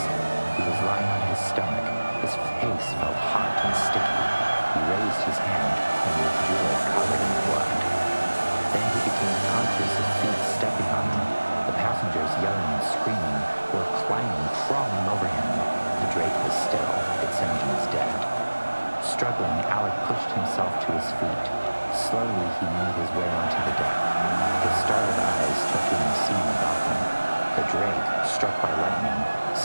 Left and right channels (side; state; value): both; inverted; correlation -1.00